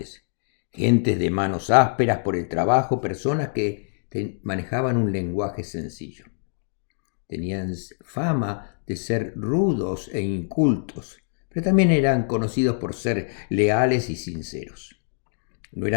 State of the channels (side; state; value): right; silent; digital silence